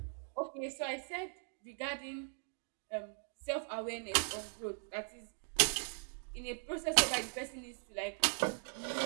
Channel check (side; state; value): left; silent; 52 dB below the other